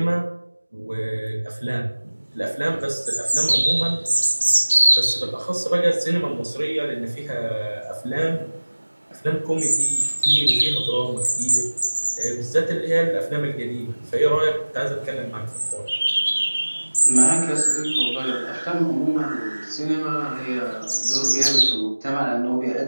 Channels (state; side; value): inverted; both; correlation -1.00